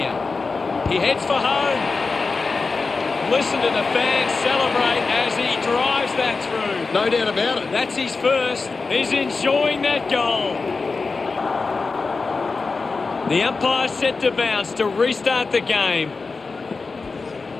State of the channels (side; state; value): right; quieter; 4.2 dB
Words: He heads for home. Listen to the fans celebrate as he drives that through. No doubt about it. That's his first. He's enjoying that goal. The umpire set to bounce to restart the game.